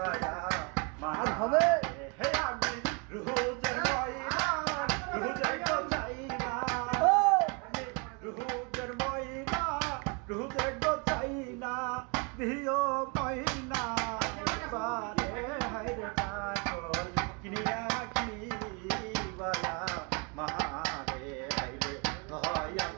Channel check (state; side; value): quieter; left; 33.1 dB